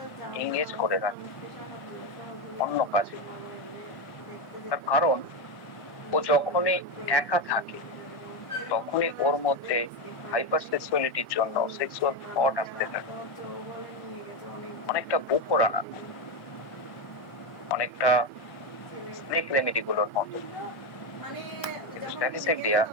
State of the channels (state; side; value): late; right; 1.1 ms